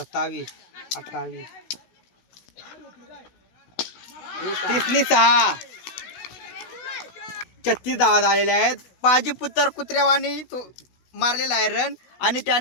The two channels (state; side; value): late; right; 16 ms